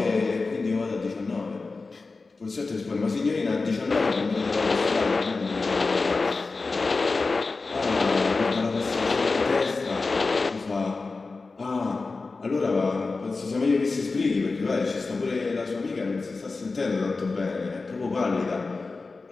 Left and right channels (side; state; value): right; quieter; 3.9 dB